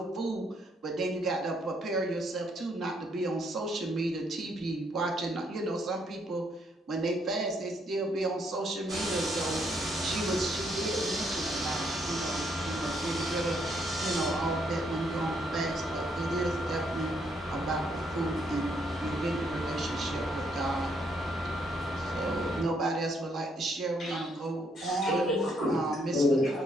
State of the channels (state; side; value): normal; both; correlation 0.72